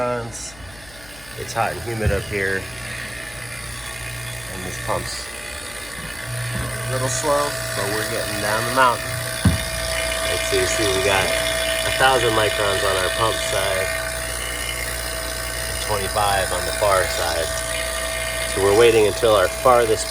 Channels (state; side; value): noise; left; hum, 22 dB below the sound